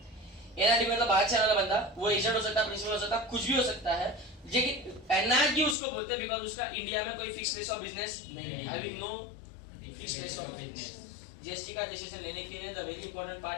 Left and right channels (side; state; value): right; drops out; at 5.8 s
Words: एनआरटी मतलब बाहर से आने वाला बंदा, वो एजेंट हो सकता है, प्रिंसिपल हो सकता है, कुछ भी हो सकता है, लेकिन एनआरटी उसको बोलते हैं बिकॉज़ उसका इंडिया में कोई फिक्स प्लेस ऑफ बिजनेस नहीं है, having no fix place of business. GST का रजिस्ट्रेशन लेने के लिए the very important